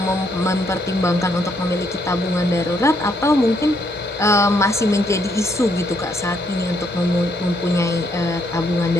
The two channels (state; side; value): normal; both; correlation 0.73